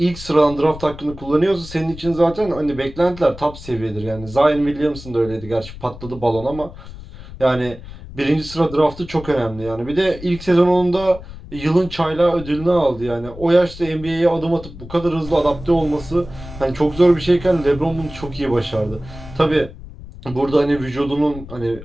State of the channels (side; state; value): left; noise; rumble, 15 dB below the sound